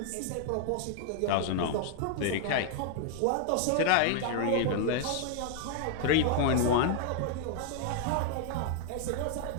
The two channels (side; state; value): both; different; correlation 0.00